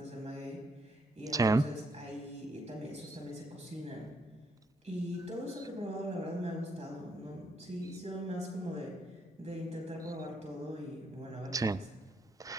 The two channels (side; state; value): both; normal; correlation 0.74